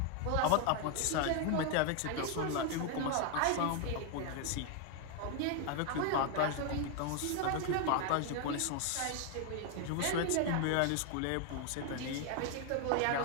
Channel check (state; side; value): different; both; correlation 0.01